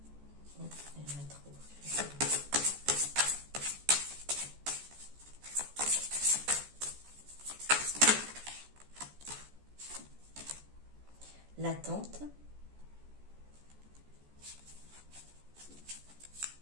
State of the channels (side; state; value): left; late; 14 ms